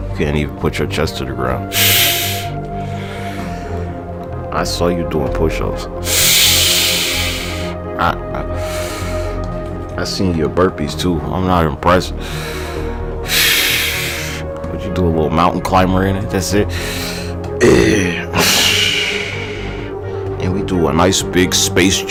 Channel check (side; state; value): both; identical; correlation 1.00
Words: can't even put your chest to the ground. I saw you doing push-ups. I seen your burpees too. I'm not impressed. But you do a little mountain climber in it. That's it. And we do a nice big space